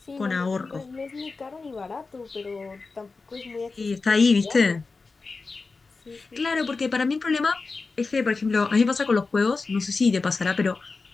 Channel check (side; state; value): right; quieter; 4.1 dB